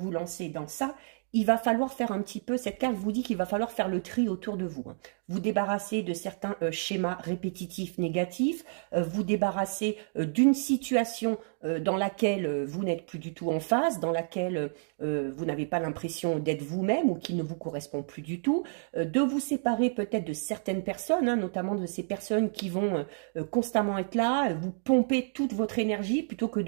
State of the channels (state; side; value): silent; left; digital silence